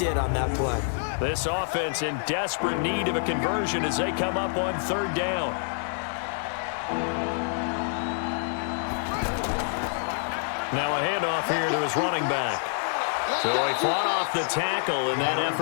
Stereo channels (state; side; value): silent; right; digital silence